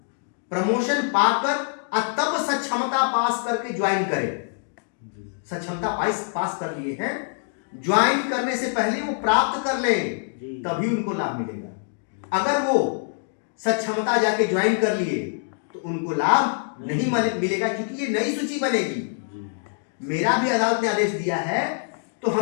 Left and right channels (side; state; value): right; silent; digital silence